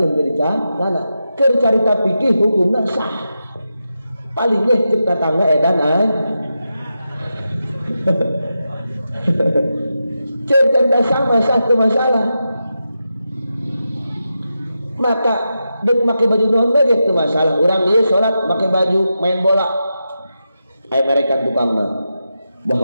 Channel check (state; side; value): inverted; both; correlation -0.88